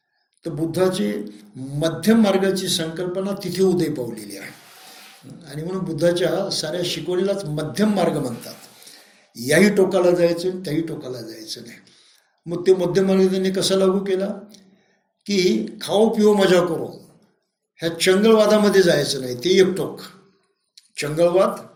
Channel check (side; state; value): both; identical; correlation 1.00